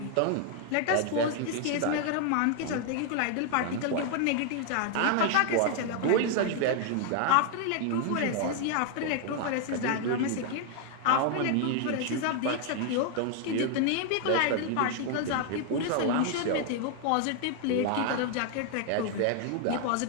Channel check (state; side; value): different; both; correlation 0.00